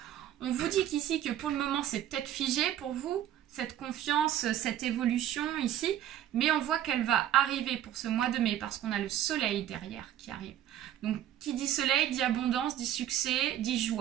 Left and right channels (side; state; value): left; quieter; 11.6 dB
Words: On vous dit qu'ici que pour le moment, c'est peut-être figé pour vous, cette confiance, cette évolution ici. Mais on voit qu'elle va arriver pour ce mois de mai parce qu'on a le soleil derrière qui arrive. Donc qui dit soleil, dit abondance, dit succès, dit